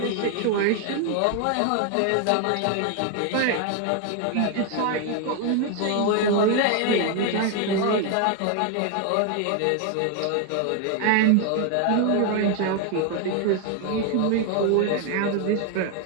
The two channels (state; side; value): different; both; correlation 0.01